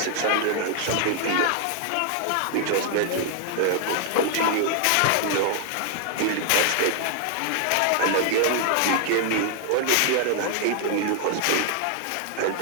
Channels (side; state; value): both; different; correlation 0.00